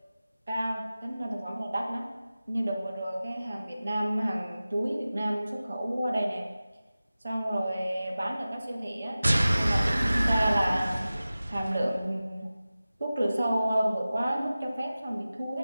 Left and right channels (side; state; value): both; inverted; correlation -0.96